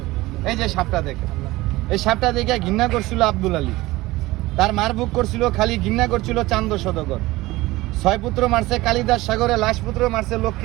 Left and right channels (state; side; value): quieter; left; 19.2 dB